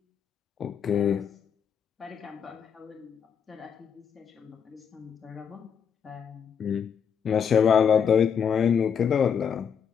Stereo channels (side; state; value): right; quieter; 7.3 dB